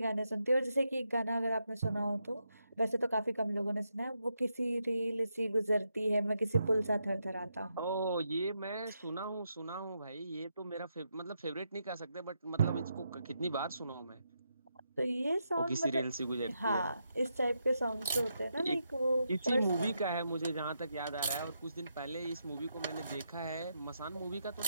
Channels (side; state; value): both; inverted; correlation -0.82